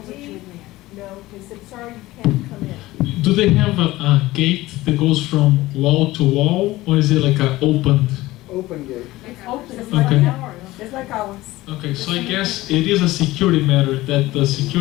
"No." They said, "Sorry, you can't come in." do they have a gate that goes from wall to wall, or is it like an opened? Open gate. It's open, it's Okay. like ours. Just like ours. Okay, so I guess it is a security matter that the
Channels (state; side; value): quieter; right; 18.0 dB